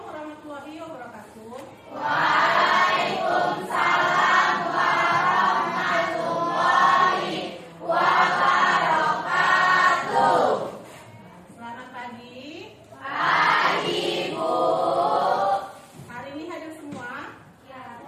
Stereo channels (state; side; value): identical; both; correlation 1.00